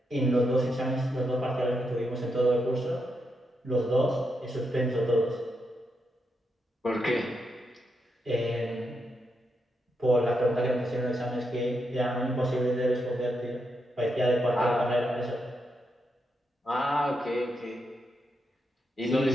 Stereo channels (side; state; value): both; normal; correlation 0.83